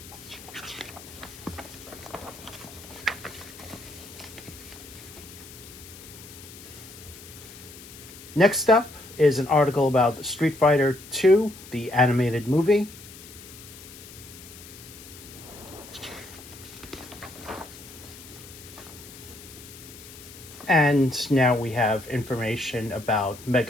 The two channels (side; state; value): left; noise; hiss, 17 dB below the sound